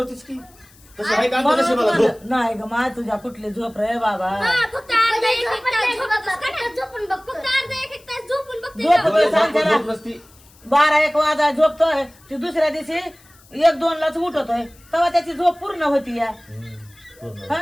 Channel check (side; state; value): left; noise; hiss, 27 dB below the sound